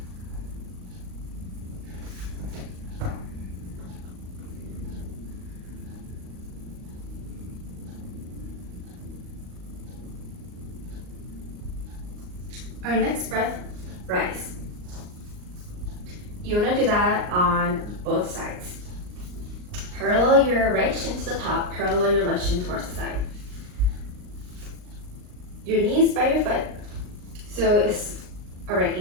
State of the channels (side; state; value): left; late; 39 ms